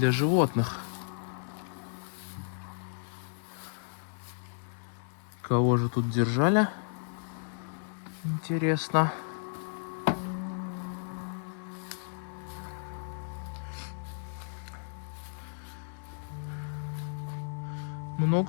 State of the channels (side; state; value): right; silent; digital silence